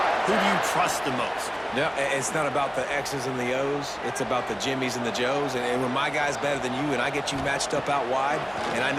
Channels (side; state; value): both; identical; correlation 1.00